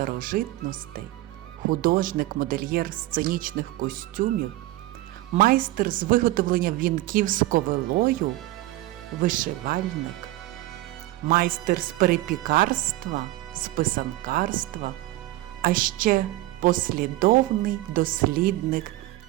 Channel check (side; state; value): left; quieter; 17.2 dB